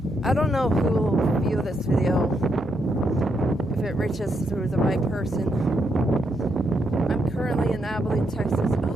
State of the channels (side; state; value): both; normal; correlation 0.79